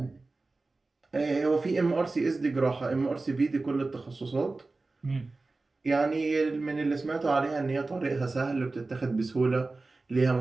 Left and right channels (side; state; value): left; quieter; 3.5 dB